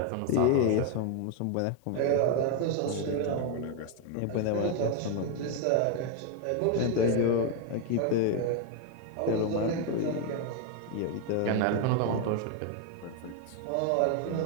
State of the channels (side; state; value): both; different; correlation 0.01